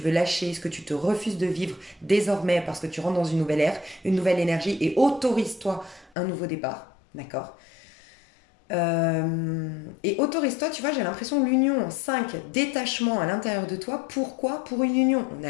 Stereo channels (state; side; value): drops out; right; at 6.1 s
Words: lâcher, ce que tu te refuses de vivre désormais parce que tu rentres dans une nouvelle ère, une nouvelle énergie et autorise-toi un nouveau départ. D'accord. Et autorise-toi, tu vois, j'ai l'impression l'union, 5 détachement à l'intérieur de toi. Pourquoi? Pour une union. On